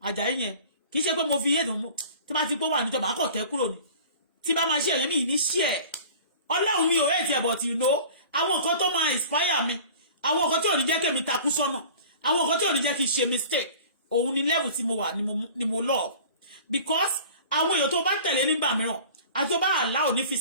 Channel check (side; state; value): both; inverted; correlation -0.43